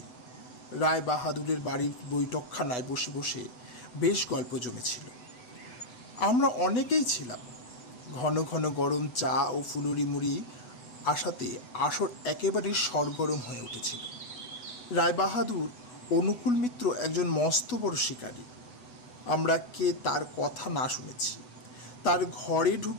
রায় বাহাদুরের বাড়ির বৈঠকখানায় বসে বসে বেশ গল্প জমেছিল। আমরা অনেকেই ছিলাম। ঘন ঘন গরম চা ও ফুলুরি মুড়ি আসাতে আসর একেবারে সরগরম হয়ে উঠেছিল। রায়বাহাদুর অনুকূল মিত্র একজন মস্ত বড় শিকারী। আমরা কে তার কথা না শুনেছি। তার ঘরে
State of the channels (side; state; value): right; late; 8.1 ms